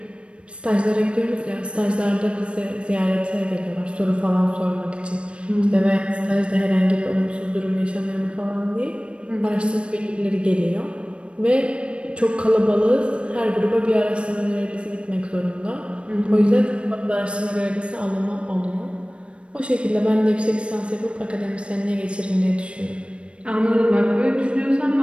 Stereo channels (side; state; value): left; late; 0.059 ms